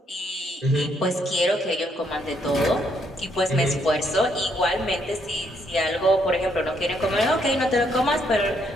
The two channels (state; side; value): normal; both; correlation 0.72